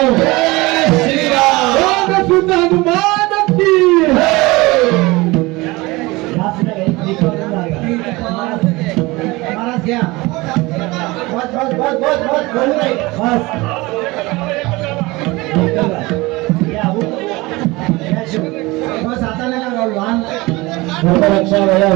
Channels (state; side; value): quieter; left; 22.1 dB